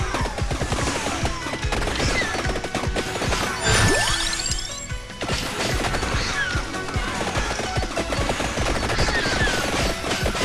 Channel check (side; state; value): both; identical; correlation 1.00